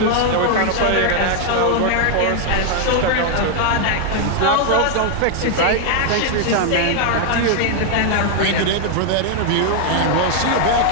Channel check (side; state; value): both; different; correlation 0.00